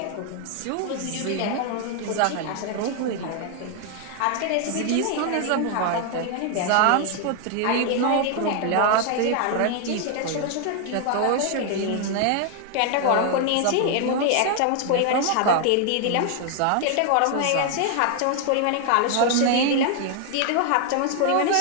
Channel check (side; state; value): both; different; correlation 0.00